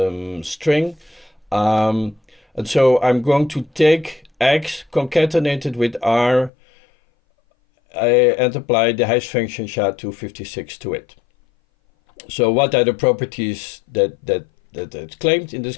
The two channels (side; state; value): right; drops out; at 6.5 s